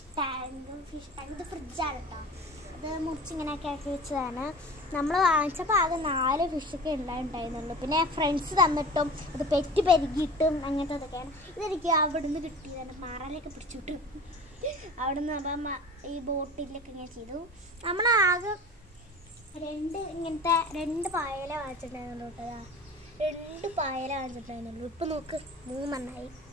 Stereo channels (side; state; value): both; normal; correlation 0.38